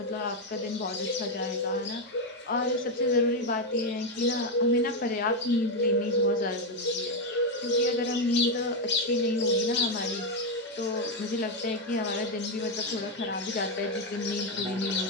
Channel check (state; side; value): normal; both; correlation 0.05